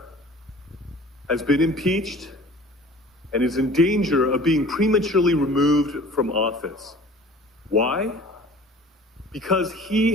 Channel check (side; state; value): both; normal; correlation 0.46